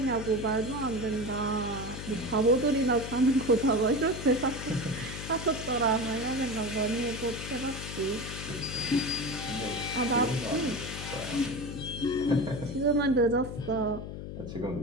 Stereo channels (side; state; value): left; noise; hum, 8 dB below the sound